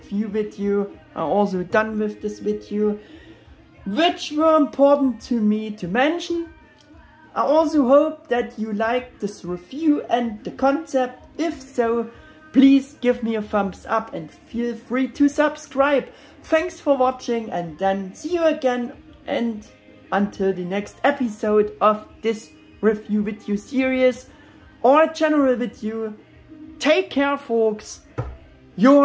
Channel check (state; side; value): identical; both; correlation 1.00